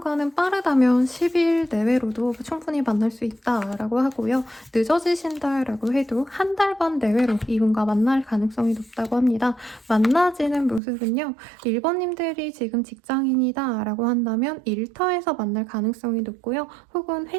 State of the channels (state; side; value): drops out; left; at 10.8 s